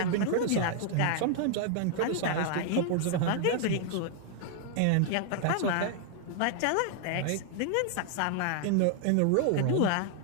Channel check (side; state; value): both; different; correlation 0.00